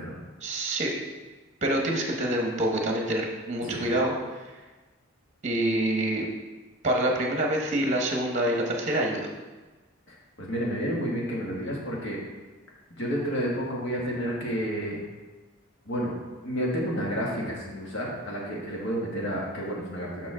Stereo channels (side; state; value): both; normal; correlation 0.37